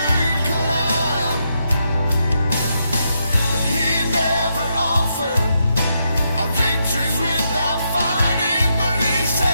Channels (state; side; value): inverted; both; correlation -0.81